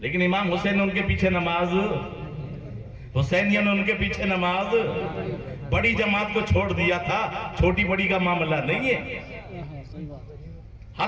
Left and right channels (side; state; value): both; identical; correlation 1.00